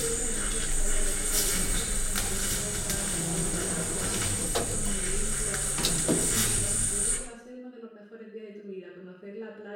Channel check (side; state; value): both; identical; correlation 1.00